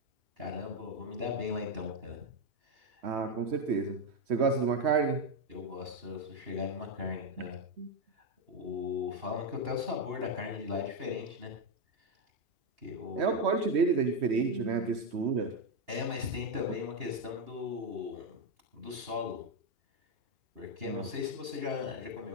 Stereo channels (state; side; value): late; left; 2.8 ms